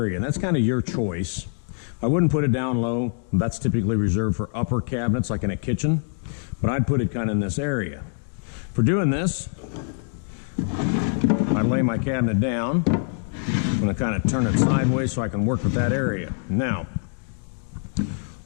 and that's kind of your choice. I wouldn't put it down low. That's typically reserved for upper cabinets like in a kitchen, but I'd put it kind of in this area. For doing this, I lay my cabinet down. I'm going to kind of turn it sideways so I can work with that area. Now,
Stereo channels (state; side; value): silent; right; 61 dB below the other